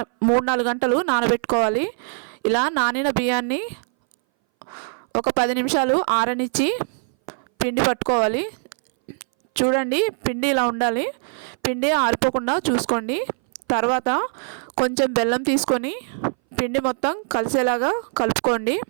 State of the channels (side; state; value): left; silent; 61 dB below the other